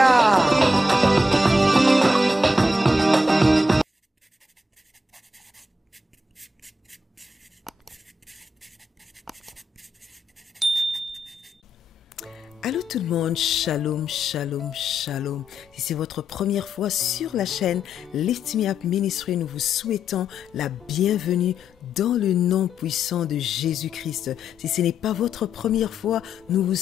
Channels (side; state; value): both; normal; correlation 0.82